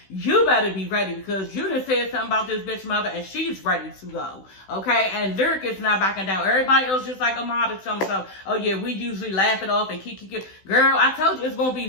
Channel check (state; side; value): late; right; 16 ms